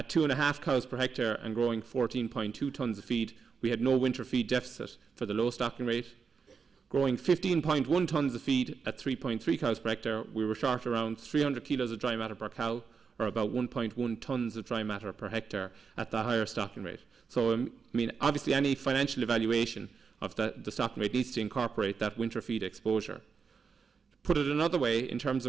2.5 cows per hectare and growing 14.2 tonnes of feed, we had no winter feed deficit for the low stocking rate. Growing 15.1 tonnes of feed at 3.3 cows per hectare, we were short around 300 kilos of dry matter per cow, or about 1.1 tonnes of dry matter per hectare at the higher stocking rate. So, obviously any financial evaluation of the stocking rate needs to incorporate that winter feed exposure. Put it another way, in terms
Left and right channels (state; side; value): quieter; left; 5.6 dB